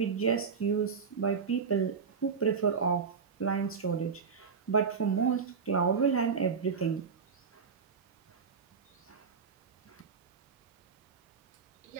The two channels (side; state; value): left; quieter; 5.8 dB